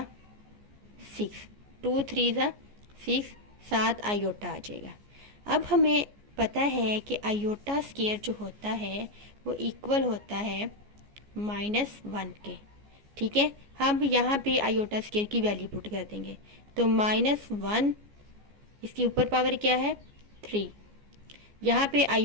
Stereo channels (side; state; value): left; late; 14 ms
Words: 6, 2 3 ज़ा 6, 7 आयोटा आ जाएगा। अब हमें पता है कि आयोटा स्क्वायर जो होता है वो इक्वल होता है -1 के। ठीक है, हम यहाँ पे आयोटा स्क्वायर की वैल्यू पुट कर देंगे। तो -1, इसकी ऊपर पावर क्या है 3। यहाँ पे